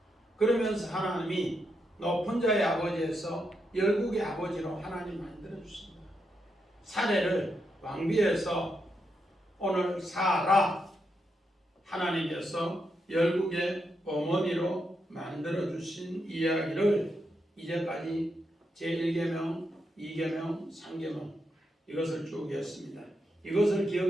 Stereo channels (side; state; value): both; normal; correlation 0.83